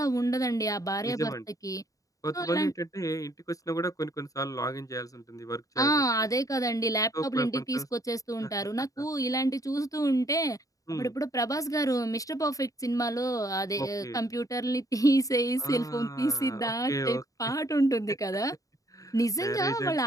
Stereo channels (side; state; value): right; late; 0.16 ms